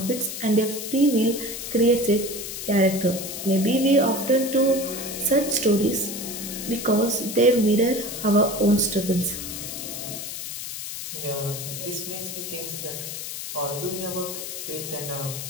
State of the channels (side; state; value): left; noise; hiss, 7 dB below the sound